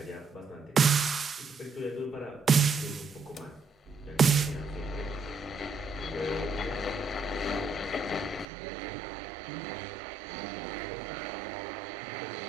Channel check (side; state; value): left; drops out; at 8.5 s